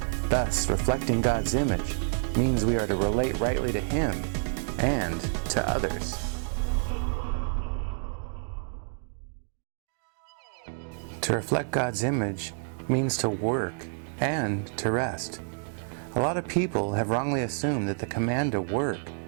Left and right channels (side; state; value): left; silent; digital silence